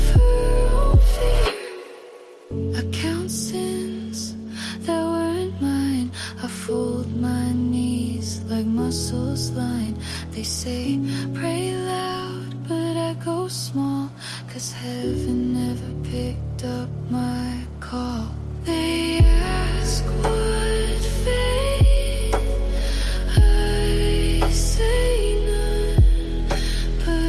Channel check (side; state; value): both; identical; correlation 1.00